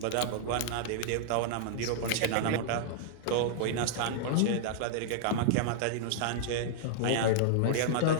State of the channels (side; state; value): both; different; correlation -0.01